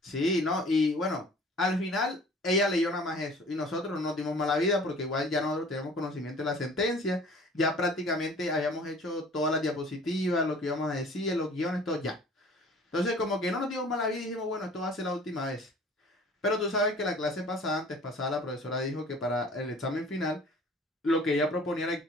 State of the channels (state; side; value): normal; both; correlation 0.49